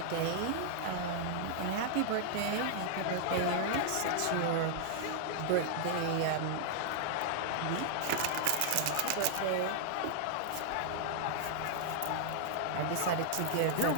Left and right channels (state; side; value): different; both; correlation -0.01